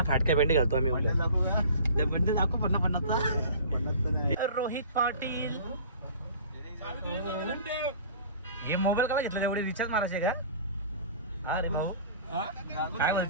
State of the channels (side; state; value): both; inverted; correlation -0.44